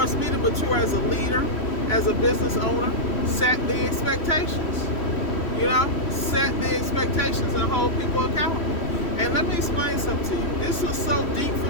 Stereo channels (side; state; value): right; late; 3.1 ms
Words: me to mature as a leader, as a business owner, set the expectations, you know, set the expectations and hold people accountable. And let me explain something to you. This was so deep